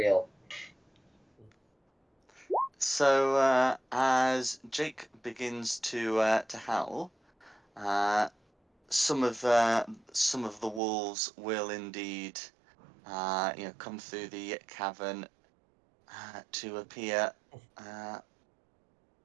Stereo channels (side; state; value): left; drops out; at 10.8 s